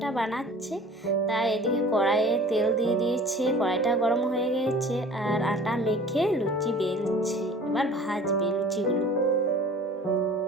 বানাচ্ছে, তাই এদিকে কড়াইয়ে তেল দিয়ে দিয়েছে, কড়াইটা গরম হয়ে গেছে। আর আটা মেখে লুচি বেলছে, এবার ভাজবে লুচিগুলো।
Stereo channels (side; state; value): both; normal; correlation 0.45